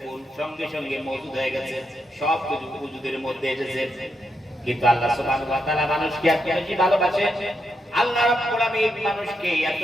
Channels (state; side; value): normal; both; correlation 0.82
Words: সঙ্গে সঙ্গে মওজুদ হয়ে গেছে, সব কিছু ওজুদের মধ্যে এসেছে। কিন্তু আল্লাহ সুবহানাহু ওয়া তাআলা মানুষকে এত বেশি ভালোবাসেন, আল্লাহ রাব্বুল আলামিন মানুষকে এত